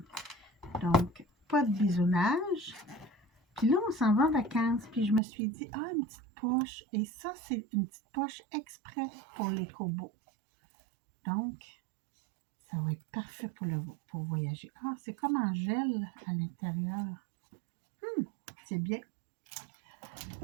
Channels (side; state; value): left; drops out; at 5.2 s